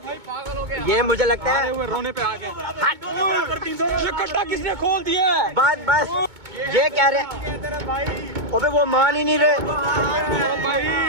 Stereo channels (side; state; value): left; late; 2.2 ms